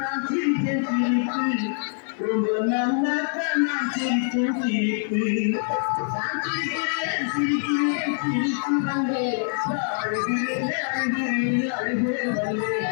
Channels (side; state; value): right; silent; 62 dB below the other